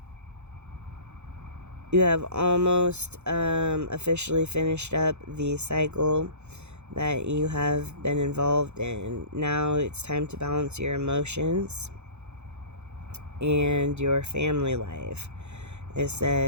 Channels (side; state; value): left; late; 0.82 ms